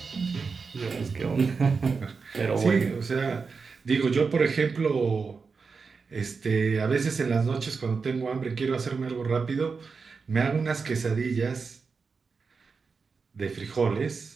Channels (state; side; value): quieter; left; 5.0 dB